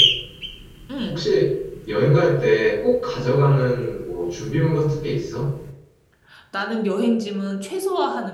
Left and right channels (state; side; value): identical; both; correlation 1.00